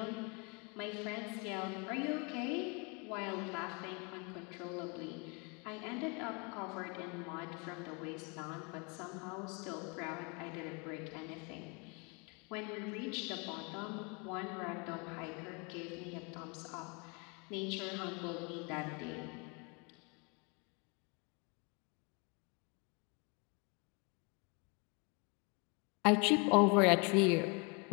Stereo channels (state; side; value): quieter; right; 32.1 dB